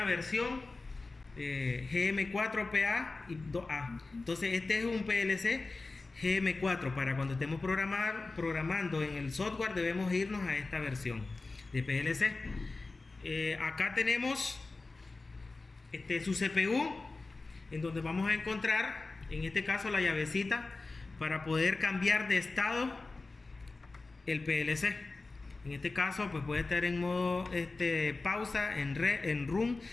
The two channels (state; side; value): quieter; right; 3.5 dB